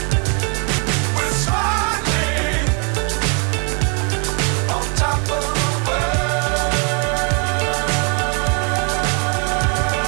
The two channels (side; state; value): left; quieter; 36.3 dB